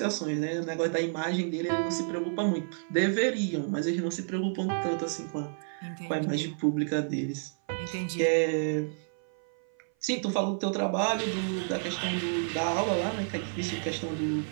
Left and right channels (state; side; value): silent; left; 56 dB below the other